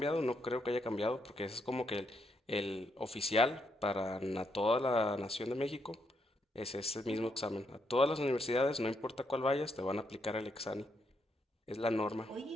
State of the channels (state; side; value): normal; both; correlation 0.77